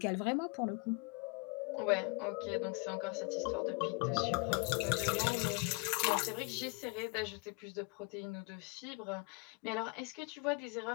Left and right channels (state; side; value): quieter; right; 31.2 dB